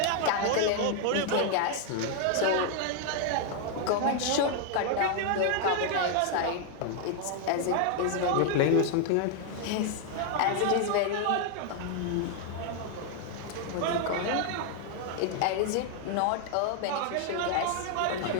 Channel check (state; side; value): different; both; correlation 0.00